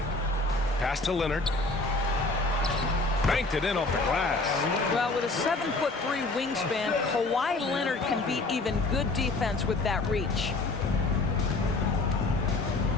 Pass to Leonard. Banked it in off the glass. Well, with a 7'3" wingspan, Kawhi Leonard can beat even good defense with that reach.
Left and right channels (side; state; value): right; quieter; 3.2 dB